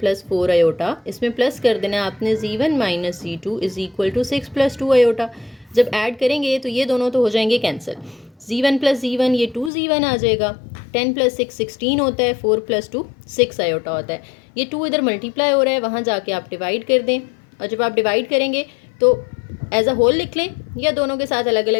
4 iota, इसमें प्लस कर देना आपने, Z1 - Z2 is equal to 6 + 2 iota. जब ऐड करेंगे तो ये दोनों तो हो जाएंगे कैंसिल, Z1 + Z1 ये 2Z1 आ जाएगा, 10 + 6 16 होता है, 4 + 2 6 आयोटा होता है। ये 2 इधर मल्टीप्लाई हो रहा है, वहाँ जाके आप डिवाइड कर दें, और जब आप डिवाइड करेंगे तो एज अ होल लिख लें या दोनों के साथ अलग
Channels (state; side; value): drops out; right; at 9.7 s